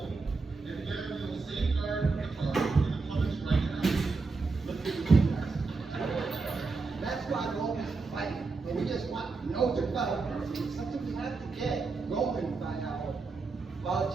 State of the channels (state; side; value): quieter; left; 4.1 dB